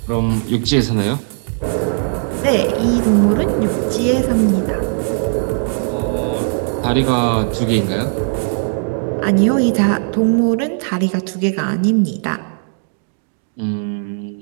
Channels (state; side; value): silent; left; digital silence